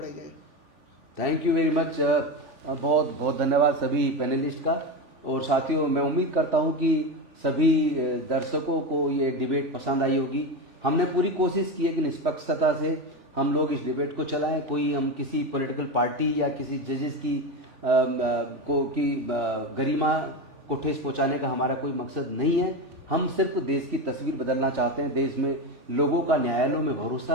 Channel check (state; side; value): late; left; 3.4 ms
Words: जाए। थैंक यू वेरी मच, बहुत बहुत धन्यवाद सभी पैनलिस्ट का। और साथियों, मैं उम्मीद करता हूं कि सभी दर्शकों को ये डिबेट पसंद आई होगी। हमने पूरी कोशिश की है कि निष्पक्षता से हम लोग इस डिबेट को चलाएं। कोई हम किसी पॉलिटिकल पार्टी या किसी जजेस की गरिमा को ठेस पहुंचाने का हमारा कोई मकसद नहीं है। हम सिर्फ देश की तस्वीर बदलना चाहते हैं, देश में लोगों का न्यायालयों में